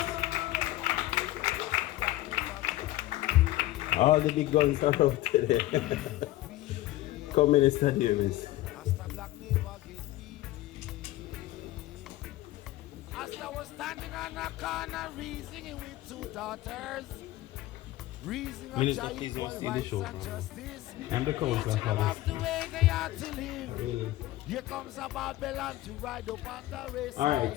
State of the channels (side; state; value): right; quieter; 16.2 dB